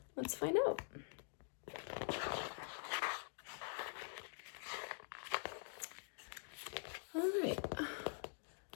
let's find out. All right.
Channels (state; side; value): silent; right; digital silence